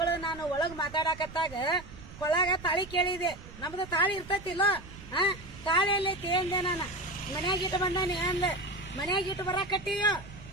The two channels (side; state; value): right; noise; rumble, 16 dB below the sound